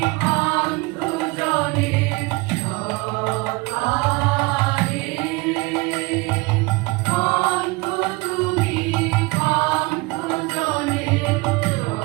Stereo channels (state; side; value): quieter; left; 24.3 dB